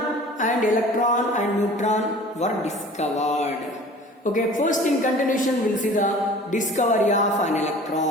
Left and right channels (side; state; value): both; normal; correlation 0.45